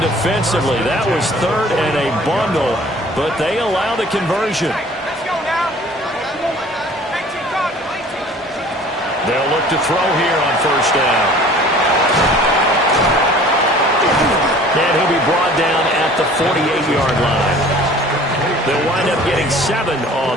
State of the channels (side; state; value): both; normal; correlation 0.49